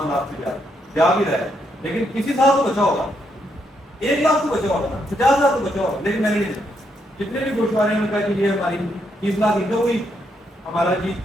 لاکھ سے جا بھی رہا ہے لیکن کسی سال تو بچا ہوگا 1 لاکھ تو بچا ہوگا 50,000 تو بچا ہوگا لیکن میں نے نہیں دیکھا. جتنے بھی گوشوارے ہیں ان کا کہ یہ ہماری 30 لاکھ انکم ہوئی ہمارا جی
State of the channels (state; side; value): normal; both; correlation 0.77